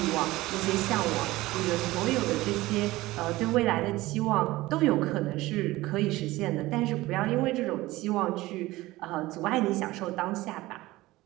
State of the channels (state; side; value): quieter; left; 18.5 dB